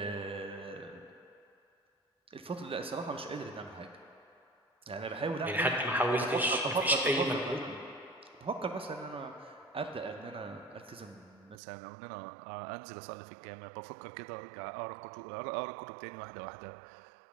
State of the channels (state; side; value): drops out; left; at 11.6 s